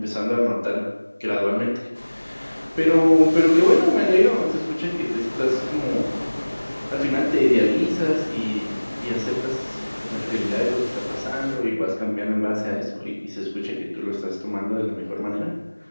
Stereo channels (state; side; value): inverted; both; correlation -1.00